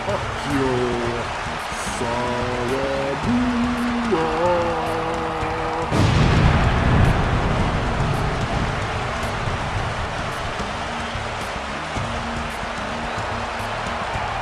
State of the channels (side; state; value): both; identical; correlation 1.00